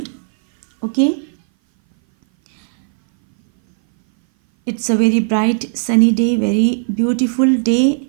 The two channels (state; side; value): silent; left; 60 dB below the other